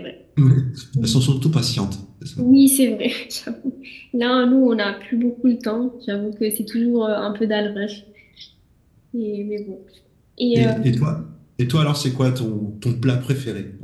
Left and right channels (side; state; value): both; identical; correlation 1.00